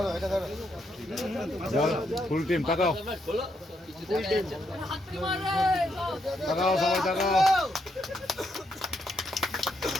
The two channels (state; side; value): normal; both; correlation 0.78